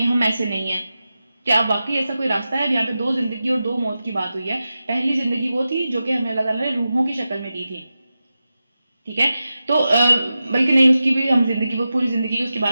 ہم ایسے نہیں ہیں، کیا اب واقعی ایسا کوئی راستہ ہے؟ اب یہاں پہ 2 زندگی اور 2 موت کی بات ہوئی ہے۔ پہلی زندگی وہ تھی جو کہ ہمیں اللہ تعالیٰ نے روحوں کی شکل میں دی تھی، ٹھیک ہے، تو بلکہ نہیں، اس کی بھی ہم زندگی، وہ پوری زندگی کی اس کی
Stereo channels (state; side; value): inverted; both; correlation -0.92